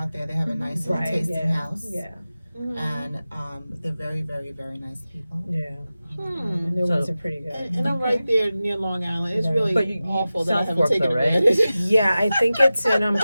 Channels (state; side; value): inverted; both; correlation -0.95